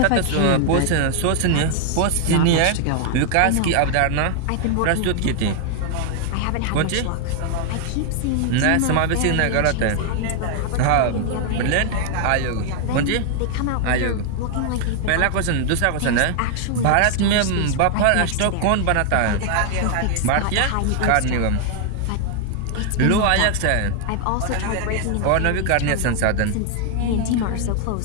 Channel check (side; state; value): both; different; correlation 0.00